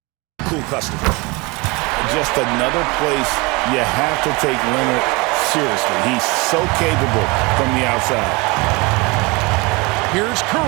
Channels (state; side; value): quieter; left; 26.3 dB